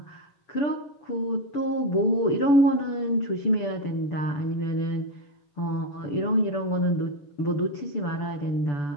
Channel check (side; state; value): right; late; 6.9 ms